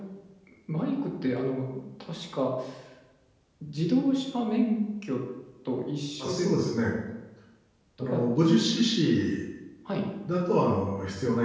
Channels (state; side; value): identical; both; correlation 1.00